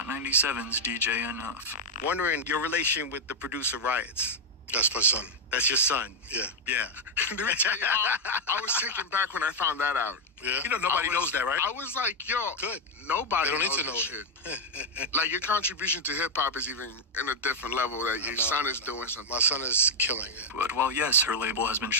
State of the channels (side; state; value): both; normal; correlation 0.01